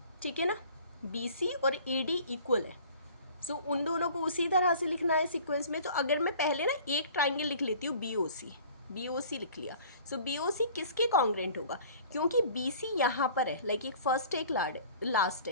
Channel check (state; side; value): inverted; both; correlation -0.48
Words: ठीक है ना, BC और AD इक्वल है। सो उन दोनों को उसी तरह से लिखना है सीक्वेंस में। तो अगर मैं पहले ना एक ट्राइंगल लिख लेती हूँ BOC लिख लिया। सो BOC किसके कॉन्ग्रेंट होगा, क्योंकि BC यहाँ पर है, लाइक एक फर्स्ट एक लास्ट